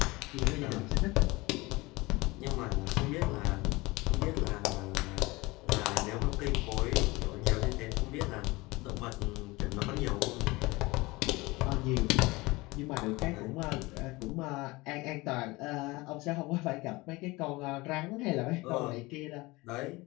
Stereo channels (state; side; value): quieter; right; 22.3 dB